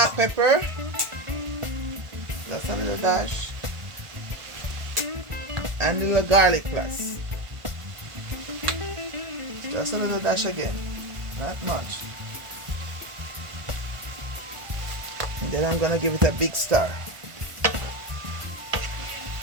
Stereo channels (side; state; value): left; late; 1.4 ms